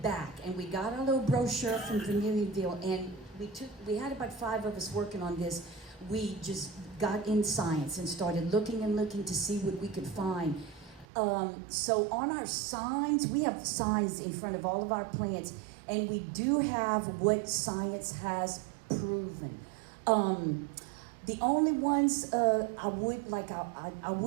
and we got our little brochure from Vermilionville, and we had about 5 of us working on this. We just got in science and started looking to see what we could find. So on our signs, we have signs in front of all of our plants, and we do have what science has proven. The only ones I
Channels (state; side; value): drops out; left; at 11.1 s